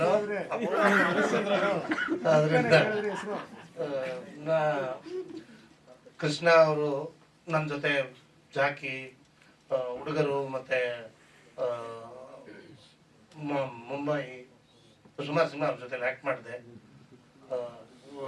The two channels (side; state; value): both; identical; correlation 1.00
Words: ಅದರಿಂದ ಕೃಷ್ಣ ಅವರು ನನ್ನ ಜೊತೆ ಜಾಕಿ, ಹುಡುಗರು, ಮತ್ತೆ ಮುಂಬೈ ಸುಮಾರು ಸಿನಿಮಾ ಅವ್ರ ಜೊತೆ ಆ್ಯಕ್ಟ್ ಮಾಡಿದೆ.